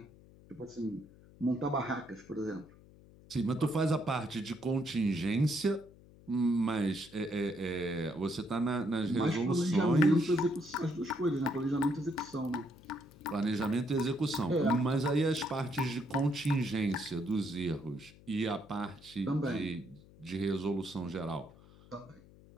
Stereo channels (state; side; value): noise; left; hum, 23 dB below the sound